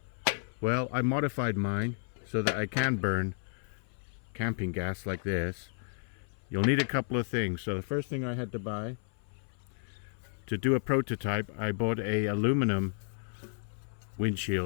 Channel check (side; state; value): right; silent; 56 dB below the other